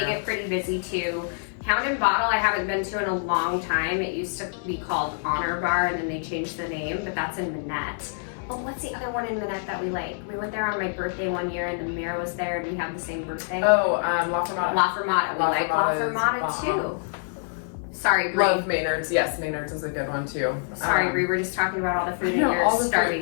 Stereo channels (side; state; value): right; silent; digital silence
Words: get pretty busy too. Hound and Bottle I haven't been to in a long time. It used to be called Honor Bar and then they changed the name, but that's in Manette. Oh, what's the other one in Manette that we like? We went there on my birthday one year and the mayor was there and we have the same birthday. Oh, La Fermata. La Fermata. We like La Fermata too. Sorry, Brie. Love Maynard's. Yes, Maynard's is a good one too. Sorry, Brie. We're just talking about all the food and you're